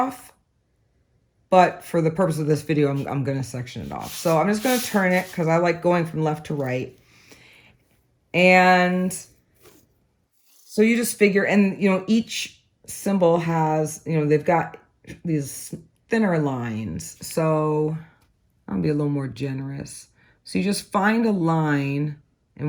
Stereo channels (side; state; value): both; identical; correlation 1.00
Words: but for the purpose of this video, I'm going to section it off. So I'm just going to turn it, because I like going from left to right. And so you just figure, and you know, each symbol has, you know, they've got these thinner lines. So I'll be a little more generous. So you just find a line